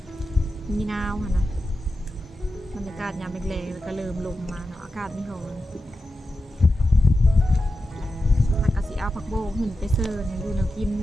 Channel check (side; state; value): both; normal; correlation 0.91